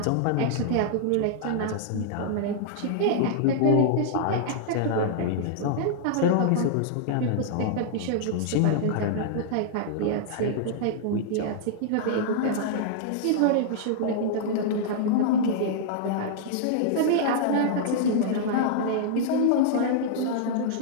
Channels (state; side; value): different; both; correlation -0.01